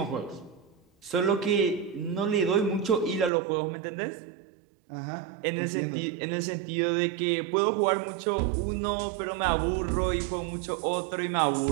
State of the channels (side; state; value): left; drops out; at 3.3 s